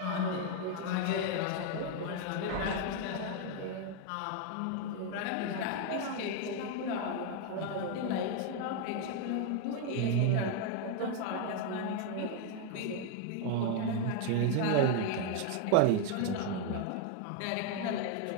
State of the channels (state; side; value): different; both; correlation 0.01